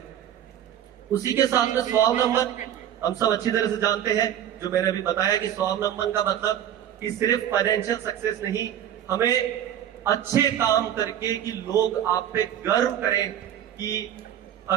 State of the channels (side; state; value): left; quieter; 10.5 dB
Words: उसी के साथ में स्वावलंबन हम सब अच्छी तरह से जानते हैं, जो मैंने अभी बताया कि स्वावलंबन का मतलब कि सिर्फ फाइनेंशियल सक्सेस नहीं, हमें अच्छे काम करके कि लोग आप पे गर्व करें कि